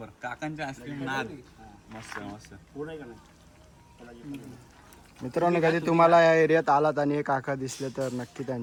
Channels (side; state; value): both; identical; correlation 1.00